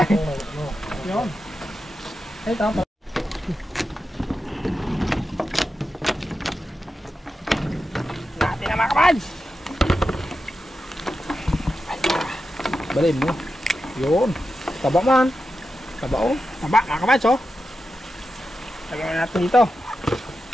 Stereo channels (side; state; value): both; normal; correlation 0.90